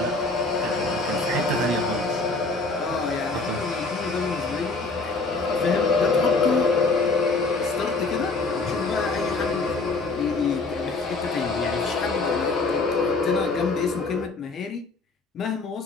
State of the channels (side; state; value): right; quieter; 3.6 dB